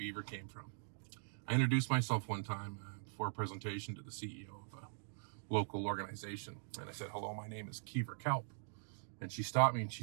came from. I introduced myself one time before a presentation to the CEO of local organization. And I said, hello, my name is Keiver Kelp. And she stopped me and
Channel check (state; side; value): silent; left; digital silence